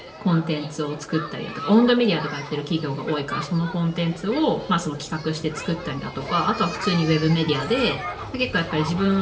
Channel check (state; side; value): identical; both; correlation 1.00